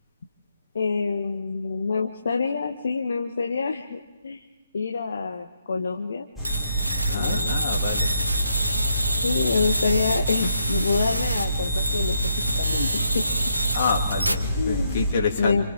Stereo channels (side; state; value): both; inverted; correlation -0.76